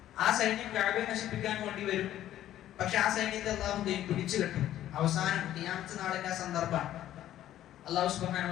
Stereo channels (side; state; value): right; quieter; 12.6 dB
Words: ആ സൈന്യം കഅബയെ നശിപ്പിക്കാൻ വേണ്ടി വരും. പക്ഷെ ആ സൈന്യത്തെ അല്ലാഹു പിടിച്ചു കെട്ടും. അവസാനം ഖിയാമത്ത് നാളിന്റെ ആ സന്ദർഭമാണ്. അല്ലാഹു സുബ്ഹാനഹു